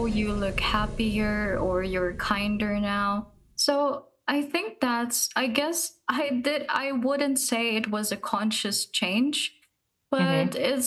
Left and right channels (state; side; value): identical; both; correlation 1.00